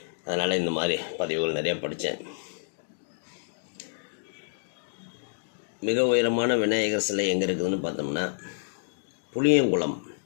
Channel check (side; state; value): right; silent; digital silence